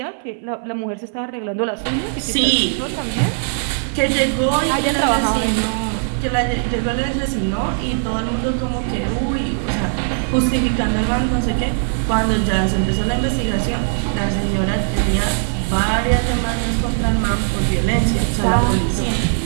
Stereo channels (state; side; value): silent; left; 60 dB below the other